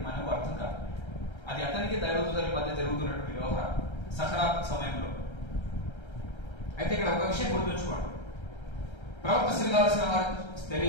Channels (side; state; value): right; late; 1.3 ms